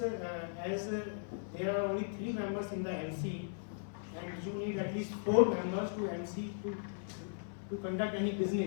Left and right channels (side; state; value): right; silent; 53 dB below the other